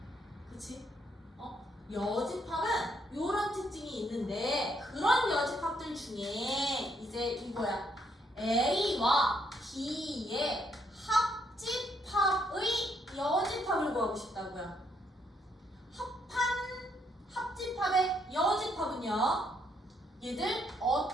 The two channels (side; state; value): both; normal; correlation 0.72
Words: 그치? 여집합은 이런 특징이 있는데 그런 여집합들 중에 이제 이거야. A와 B의 합집합의 여집합을 구하고 싶다고요. 합집합의 여집합은요. 얘들